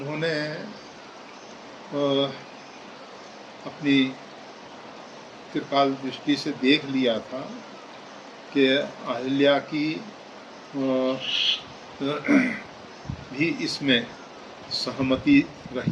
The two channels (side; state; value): both; identical; correlation 1.00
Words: अपनी त्रिकाल दृष्टि से देख लिया था कि अहिल्या की भी इसमें सहमति